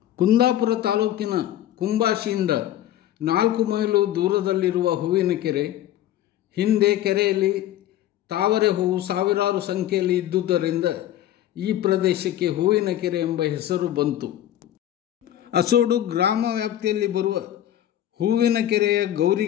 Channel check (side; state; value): right; quieter; 12.4 dB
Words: ಕುಂದಾಪುರ ತಾಲೂಕಿನ ಕುಂಬಾಶಿಯಿಂದ 4 ಮೈಲು ದೂರದಲ್ಲಿರುವ ಹೂವಿನಕೆರೆ. ಹಿಂದೆ ಕೆರೆಯಲ್ಲಿ ತಾವರೆ ಹೂವು ಸಾವಿರಾರು ಸಂಖ್ಯೆಯಲ್ಲಿ ಇದ್ದುದರಿಂದ ಈ ಪ್ರದೇಶಕ್ಕೆ ಹೂವಿನಕೆರೆ ಎಂಬ ಹೆಸರು ಬಂತು. ಅಸೋಡು ಗ್ರಾಮ ವ್ಯಾಪ್ತಿಯಲ್ಲಿ ಬರುವ ಹೂವಿನಕೆರೆಯ